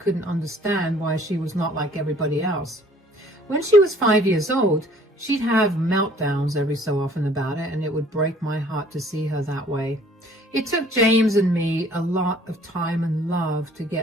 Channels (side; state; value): both; normal; correlation 0.56